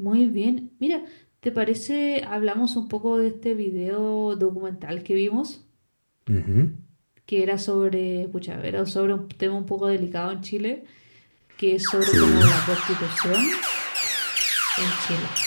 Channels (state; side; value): inverted; both; correlation -1.00